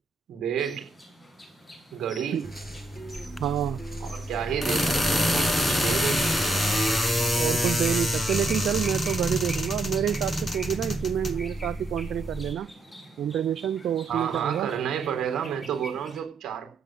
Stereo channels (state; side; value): quieter; left; 3.1 dB